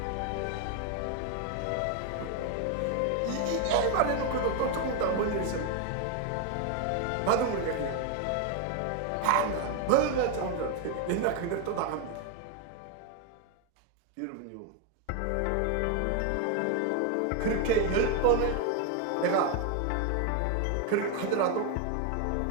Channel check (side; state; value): both; different; correlation 0.01